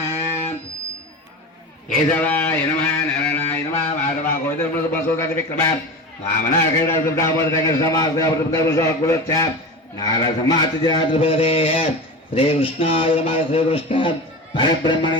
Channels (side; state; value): both; normal; correlation 0.28